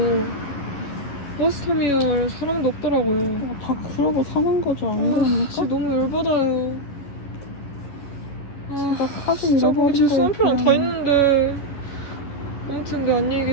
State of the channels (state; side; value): late; right; 11 ms